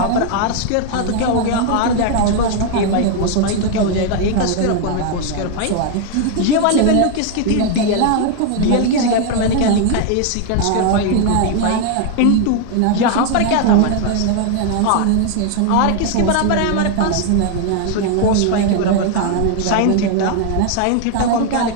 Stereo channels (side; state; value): both; different; correlation 0.00